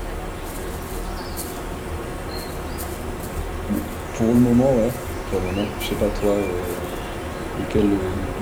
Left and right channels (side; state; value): both; identical; correlation 1.00